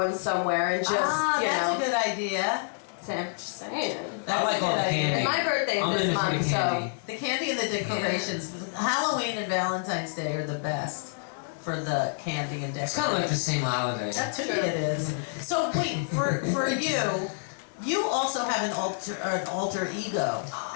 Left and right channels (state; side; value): silent; right; digital silence